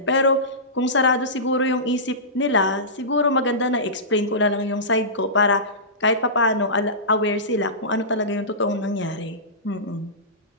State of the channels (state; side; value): normal; both; correlation -0.20